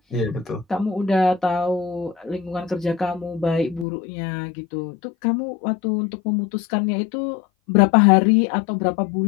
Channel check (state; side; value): drops out; right; at 3.9 s